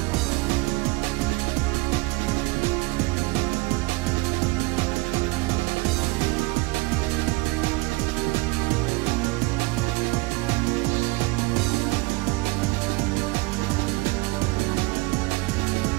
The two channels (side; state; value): left; quieter; 24.8 dB